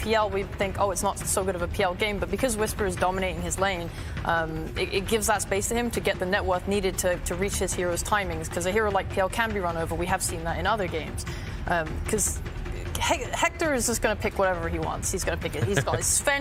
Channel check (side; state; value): both; identical; correlation 1.00